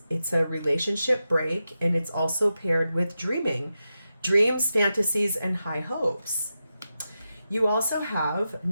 It's a relationship break, and it's also paired with dreaming. Dreams, fantasies, and high hopes. You also have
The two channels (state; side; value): inverted; both; correlation -0.90